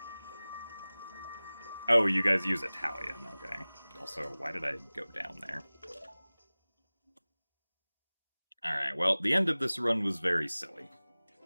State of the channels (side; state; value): both; inverted; correlation -0.99